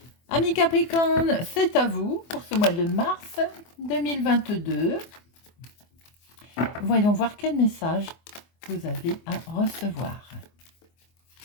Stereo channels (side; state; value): right; late; 24 ms